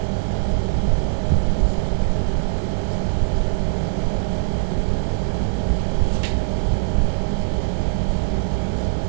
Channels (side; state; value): left; silent; digital silence